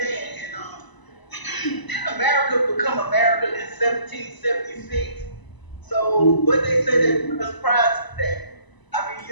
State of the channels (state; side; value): late; right; 1.0 ms